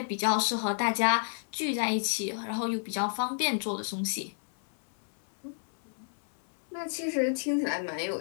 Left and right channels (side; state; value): right; silent; 58 dB below the other